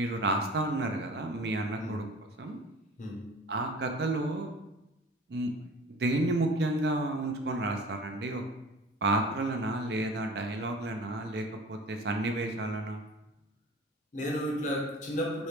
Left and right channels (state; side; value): normal; both; correlation 0.42